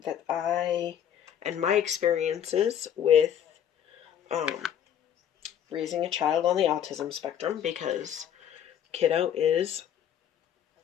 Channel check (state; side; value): quieter; right; 9.6 dB